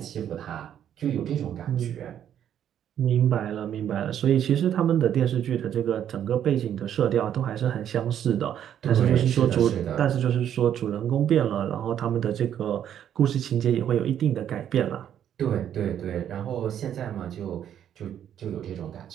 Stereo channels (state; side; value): quieter; left; 9.9 dB